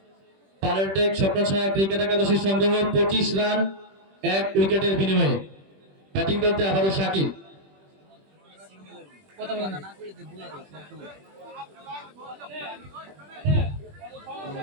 পালারেটেক স্বপ্নসায়া ক্রিকেট একাদশের সংগ্রহ 25 রান 1 উইকেটের বিনিময়ে। ব্যাটিং করতে আবারও শাকিল।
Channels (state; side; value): late; left; 21 ms